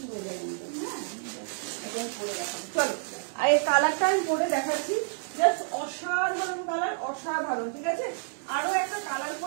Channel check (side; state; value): left; silent; 58 dB below the other